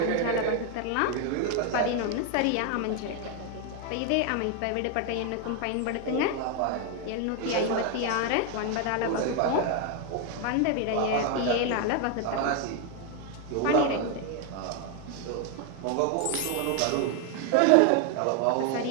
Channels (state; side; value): different; both; correlation 0.01